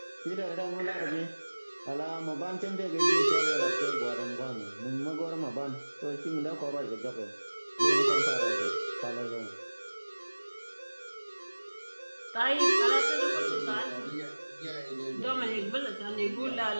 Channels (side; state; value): both; inverted; correlation -1.00